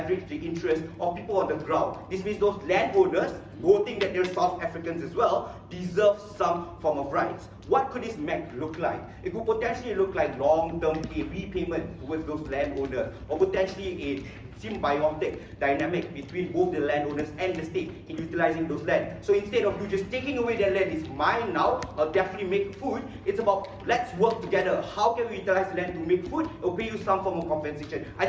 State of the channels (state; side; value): identical; both; correlation 1.00